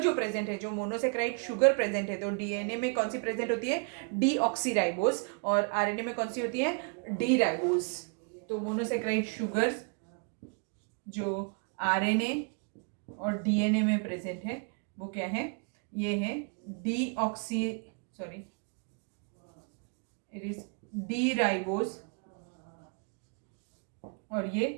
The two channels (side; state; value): left; quieter; 37.2 dB